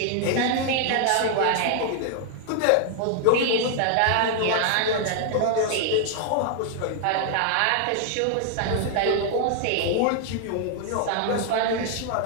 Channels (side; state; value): both; different; correlation 0.00